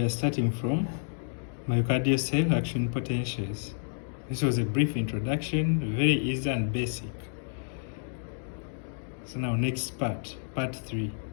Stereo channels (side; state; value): right; silent; digital silence